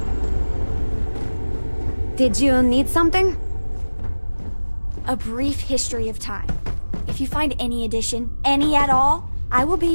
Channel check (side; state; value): both; inverted; correlation -1.00